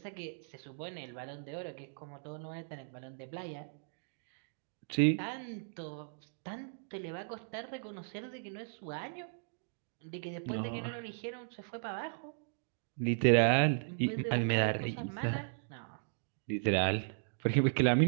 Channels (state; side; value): silent; left; digital silence